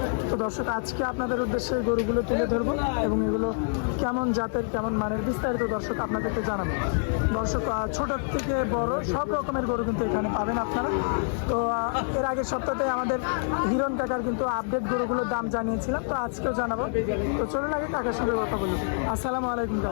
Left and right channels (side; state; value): right; silent; digital silence